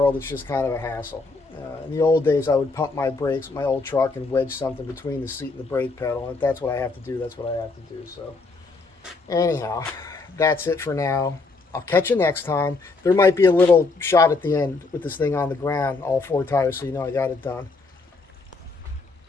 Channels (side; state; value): right; quieter; 3.8 dB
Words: it's just kind of a hassle. In the old days, I would pump my brakes with my old truck and wedge something between the seat and the brake pedal, and if that's what I have to do, that's what I have to do. So anyhow, that's it for now. I'll catch you next time. There might be a little shot at the end with this thing on the ground, all 4 tires, so you know I got it done.